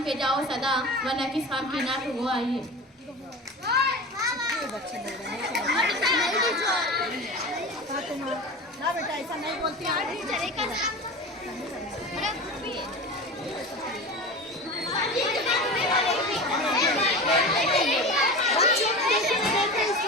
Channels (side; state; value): both; normal; correlation 0.31